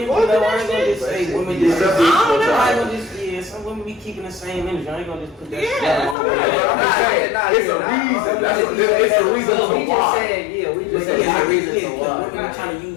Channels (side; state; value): right; drops out; at 6.2 s